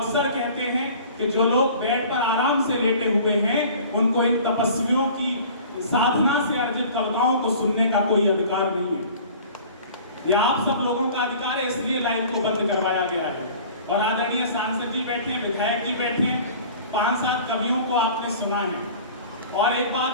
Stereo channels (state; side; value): inverted; both; correlation -0.45